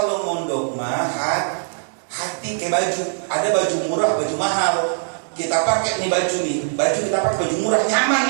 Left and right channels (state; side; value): silent; left; 65 dB below the other